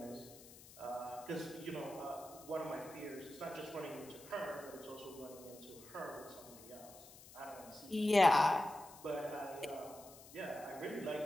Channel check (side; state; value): left; noise; hiss, 19 dB below the sound